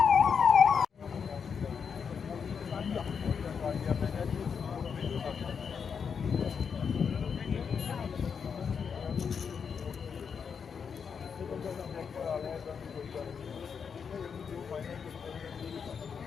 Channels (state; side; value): quieter; right; 6.5 dB